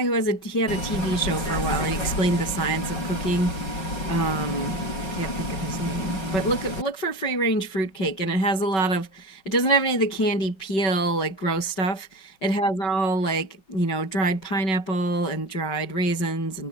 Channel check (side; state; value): right; late; 5.3 ms